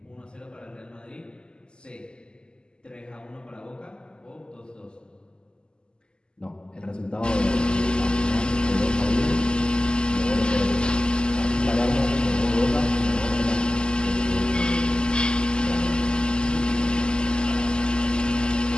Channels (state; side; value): late; right; 0.048 ms